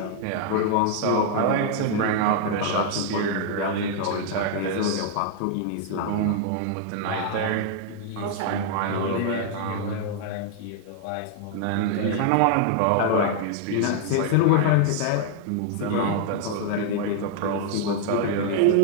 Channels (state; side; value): different; both; correlation 0.00